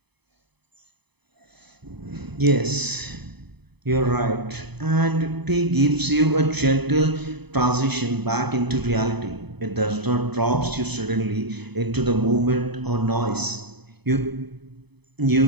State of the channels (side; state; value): left; late; 0.98 ms